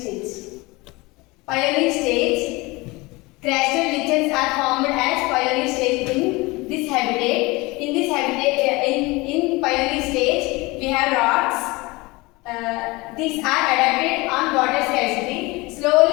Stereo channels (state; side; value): quieter; right; 23.3 dB